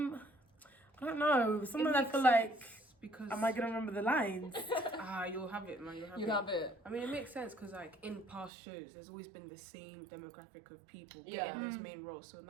don't know. Sometimes I feel like, because am I gonna remember the lines? you'll have it, man. You have it. I mean, it makes sense because like in past shows, there's always been the same demographic of people Yeah. getting those main roles. So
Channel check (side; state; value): left; drops out; at 8.5 s